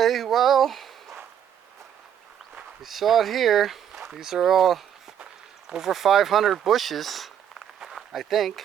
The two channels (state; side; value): quieter; left; 9.3 dB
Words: well, you saw it here. These are all over 500 bushes, I think.